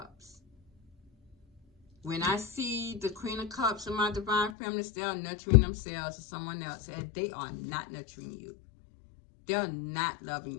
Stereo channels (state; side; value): drops out; right; at 4.5 s